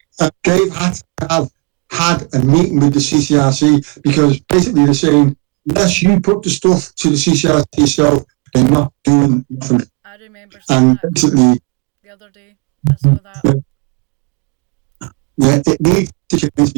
they've had to have had a meeting with the CCRC, because basically they're saying, unless you put the stuff to the CCRC yourself, they're not doing nothing. I remember seeing that basically the other day. I saw that. It needs to change,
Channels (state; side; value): quieter; left; 33.3 dB